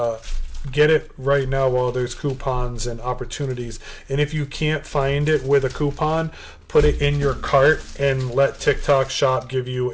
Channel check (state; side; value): identical; both; correlation 1.00